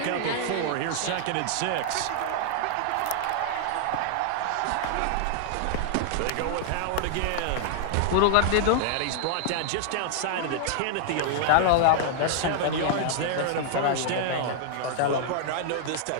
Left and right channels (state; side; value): different; both; correlation -0.01